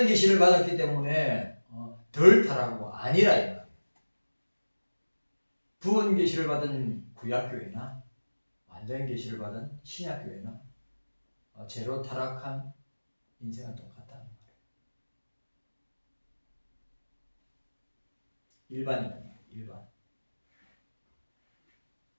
계시를 받았기 때문에 덜 타락하고 아니라 이 말이에요. 부분 계시를 받은 구약교회나 완전 계시를 받은 신약교회나 제로 타락한 인생은 똑같다는 말이에요. 일반.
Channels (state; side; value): inverted; both; correlation -1.00